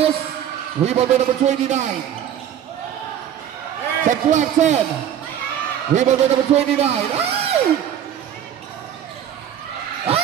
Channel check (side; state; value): left; quieter; 9.9 dB